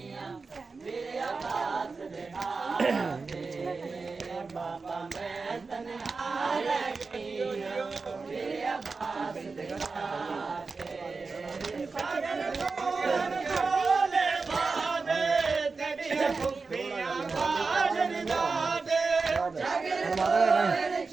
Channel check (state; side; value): quieter; left; 4.3 dB